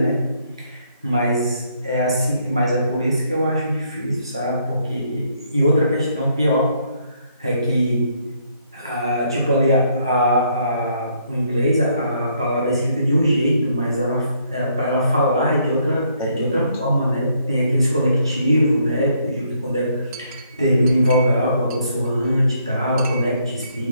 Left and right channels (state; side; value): inverted; both; correlation -0.70